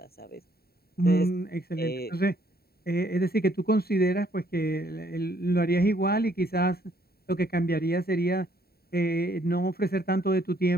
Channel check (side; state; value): right; late; 0.45 ms